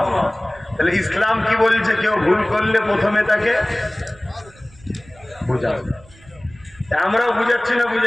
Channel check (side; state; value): right; noise; rumble, 25 dB below the sound